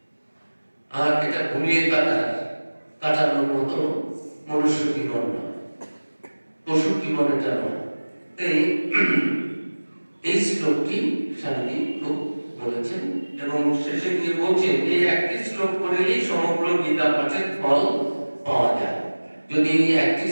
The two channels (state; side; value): inverted; both; correlation -1.00